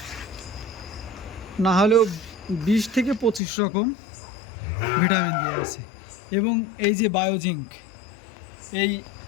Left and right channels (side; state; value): right; drops out; at 3.4 s